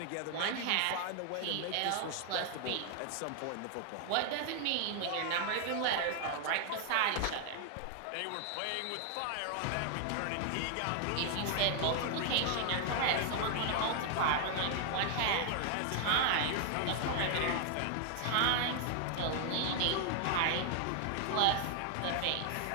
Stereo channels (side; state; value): both; different; correlation 0.00